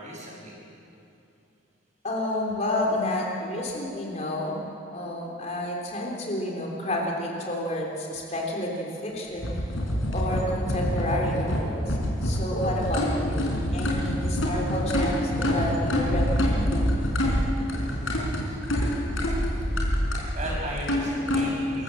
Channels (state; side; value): normal; both; correlation 0.57